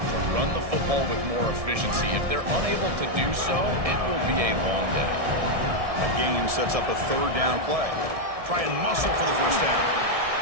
run the football with more efficiency. If they're unable to do so, it will be a long day. A gain sets up a third down play. Try and muscle for the first down.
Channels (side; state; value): left; late; 1.7 ms